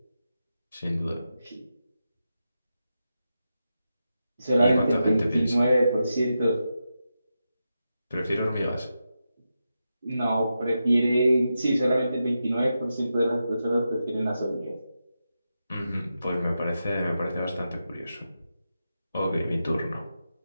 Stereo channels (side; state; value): both; inverted; correlation -0.89